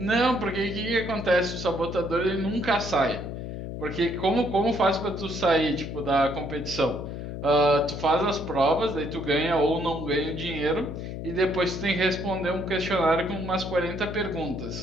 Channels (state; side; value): noise; left; hum, 7 dB below the sound